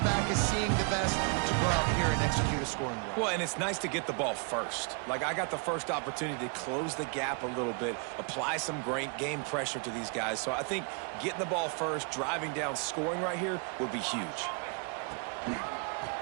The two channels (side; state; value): left; quieter; 37.3 dB